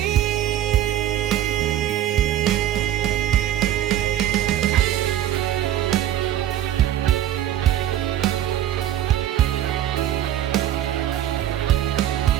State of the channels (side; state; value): left; quieter; 11.9 dB